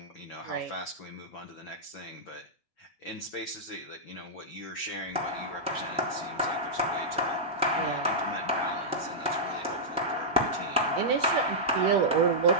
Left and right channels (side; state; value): both; normal; correlation -0.11